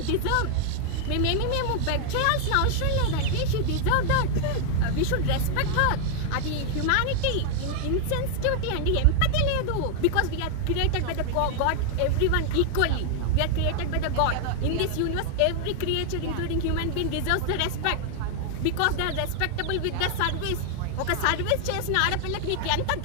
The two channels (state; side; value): different; both; correlation 0.00